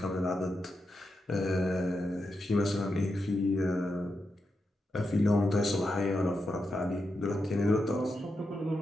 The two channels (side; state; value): both; normal; correlation 0.87